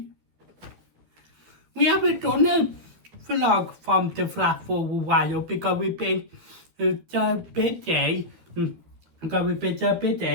We haven't done a vlog from the flat for a while because we've been so busy.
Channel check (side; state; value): left; late; 13 ms